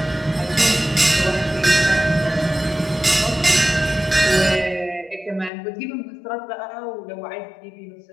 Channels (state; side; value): drops out; right; at 5.5 s